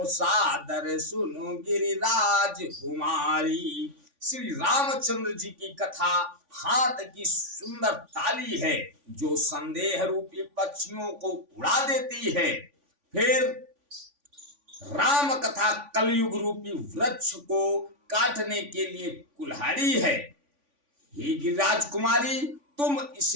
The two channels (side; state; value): left; late; 3.5 ms